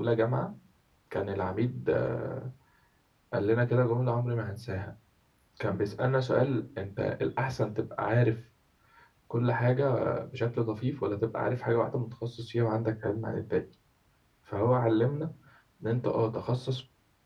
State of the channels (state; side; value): identical; both; correlation 1.00